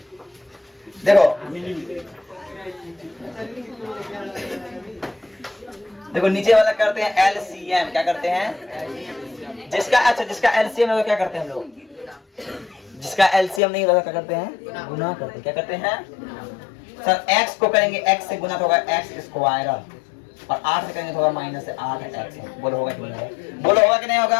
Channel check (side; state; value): right; drops out; at 13.6 s